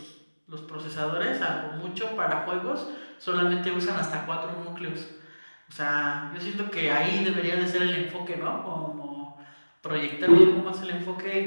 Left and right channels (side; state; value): both; inverted; correlation -1.00